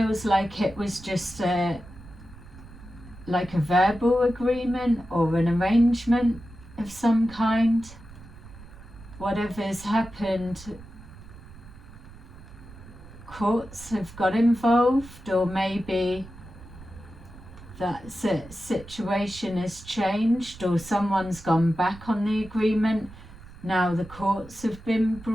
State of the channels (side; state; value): right; noise; rumble, 18 dB below the sound